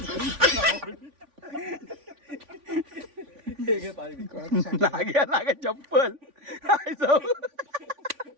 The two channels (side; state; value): left; late; 3.5 ms